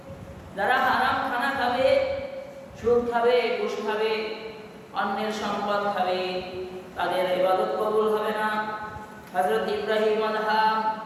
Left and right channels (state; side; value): identical; both; correlation 1.00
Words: যারা হারাম খানা খাবে, সুদ খাবে, ঘুষ খাবে, অন্যের সম্পদ খাবে, তাদের ইবাদত কবুল হবে না। হযরত ইব্রাহিম